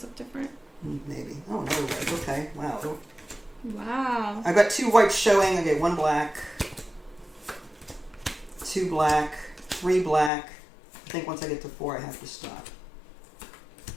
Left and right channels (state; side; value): drops out; right; at 10.3 s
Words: look different. Maybe. Oh no. Okay. Wow. Wow. I've got 2 whites showing. Okay, 1 black, 2 black, 3 black. I think once I get to 4, I have to stop.